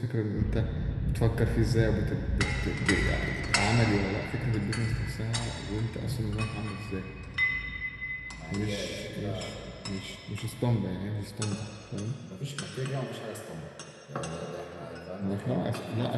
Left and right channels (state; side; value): identical; both; correlation 1.00